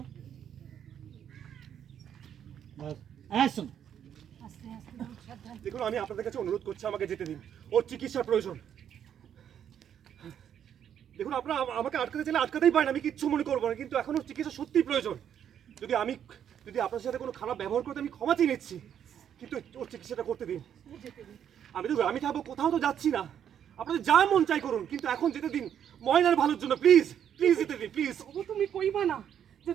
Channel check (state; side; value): quieter; left; 9.2 dB